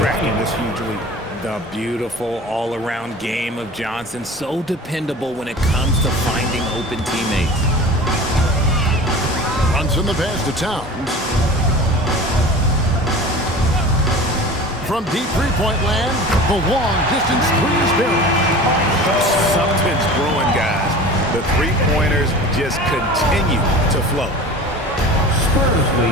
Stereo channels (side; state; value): both; normal; correlation 0.38